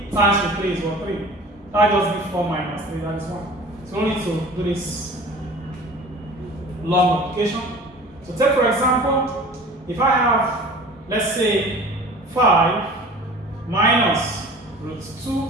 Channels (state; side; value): normal; both; correlation 0.42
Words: times root 3 is what? 3. That just gives 4 minus 3. That is 1. So we need to do this long multiplication. So take for example, if I have, let's say, 5 minus root